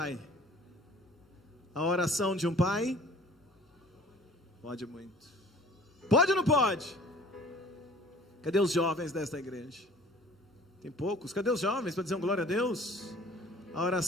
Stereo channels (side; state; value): both; normal; correlation 0.50